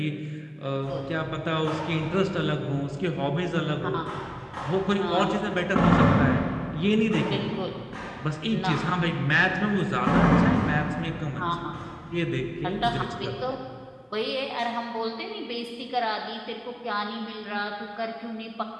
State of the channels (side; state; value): both; identical; correlation 1.00